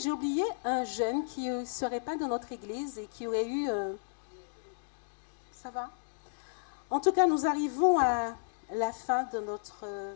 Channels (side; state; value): right; silent; digital silence